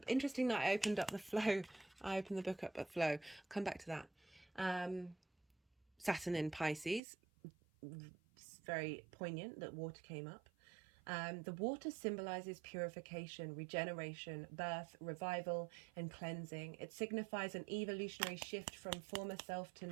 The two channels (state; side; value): drops out; left; at 7.0 s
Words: Interesting that I opened up the flow. I opened the book up at flow. Come back to that. Saturn in Pisces. It's very poignant that water came up. The water symbolizes purification, regeneration, birth, revival, and cleansing. It signifies an evolutionary shift from former self to